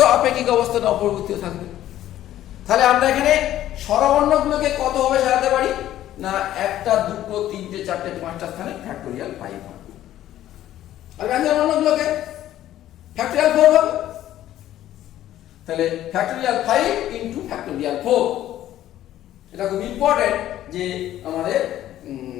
আপেক্ষিক অবস্থানে অপরিবর্তিত থাকবে। তাহলে আমরা এখানে স্বরবর্ণগুলোকে কতভাবে সাজাতে পারি না 1টা 2টো 3টে 4টে 5টা স্থানে ফ্যাক্টোরিয়াল 5 হয়। আর ব্যঞ্জন বর্ণগুলোকে ফ্যাক্টোরিয়াল 4 হবে। তাহলে ফ্যাক্টোরিয়াল 5 ইনটু ফ্যাক্টোরিয়াল 4। এটা খুব ইম্পর্টেন্ট যে আমাদের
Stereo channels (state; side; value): quieter; right; 12.9 dB